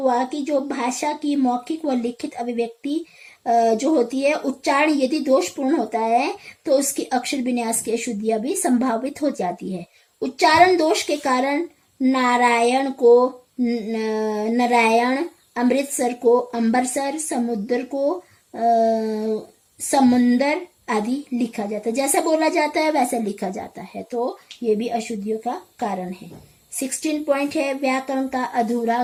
कि जो भाषा की मौखिक व लिखित अभिव्यक्ति जो होती है, उच्चारण यदि दोषपूर्ण होता है तो उसकी अक्षर विन्यास की अशुद्धियां भी संभावित हो जाती है। उच्चारण दोष के कारण नारायण को नारायण, अमृतसर को अम्बरसर, समुद्र को समुंदर आदि लिखा जाता है। जैसा बोला जाता है वैसा लिखा जाता है, तो ये भी अशुद्धियों का कारण है। 16 पॉइंट है व्याकरण का अधूरा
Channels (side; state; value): both; identical; correlation 1.00